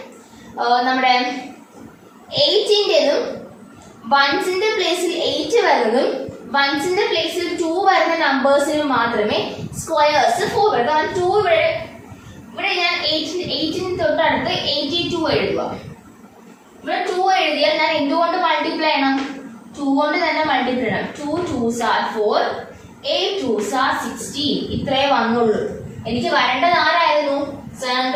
നമ്മുടെ 8-ൻ്റെതും വൺസിന്റെ പ്ലേസിൽ 8 വരുന്നതും വൺസിന്റെ പ്ലേസിൽ 2 വരുന്ന നമ്പേഴ്സിന് മാത്രമേ സ്ക്വയേഴ്സ് 4 വരും. കാരണം 2 ഇവിടെ ഞാൻ 8-ന് തൊട്ടടുത്ത് 82 എഴുതുക. ഇവിടെ 2 എഴുതിയാൽ ഞാൻ എന്തുകൊണ്ട് മൾട്ടിപ്ലൈ ചെയ്യണം? 2 കൊണ്ട് തന്നെ മൾട്ടിപ്ലൈ ചെയ്യണം. 2 2s are 4, 8 2s are 16. ഇത്രേ വന്നുള്ളൂ. എനിക്ക് വരേണ്ടത് ആരായിരുന്നു?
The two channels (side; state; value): both; identical; correlation 1.00